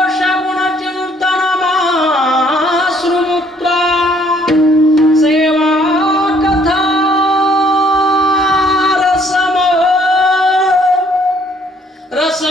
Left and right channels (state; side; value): normal; both; correlation 0.63